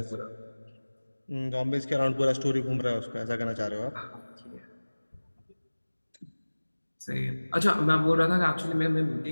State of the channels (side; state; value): both; inverted; correlation -1.00